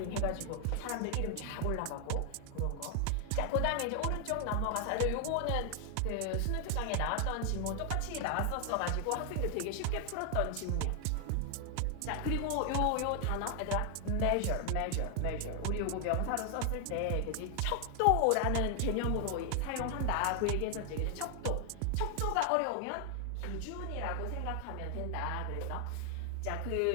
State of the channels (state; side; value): different; both; correlation 0.00